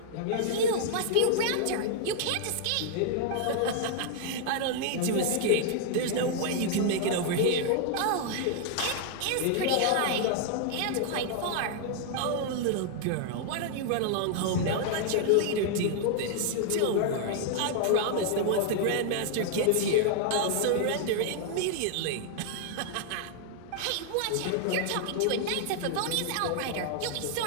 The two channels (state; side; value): different; both; correlation 0.00